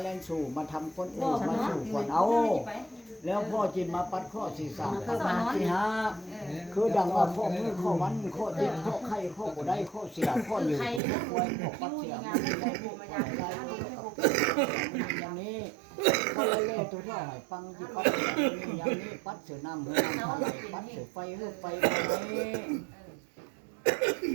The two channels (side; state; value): left; drops out; at 11.0 s